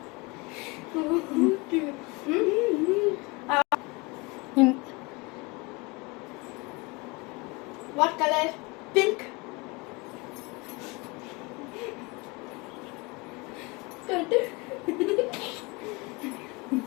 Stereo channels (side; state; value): right; quieter; 26.3 dB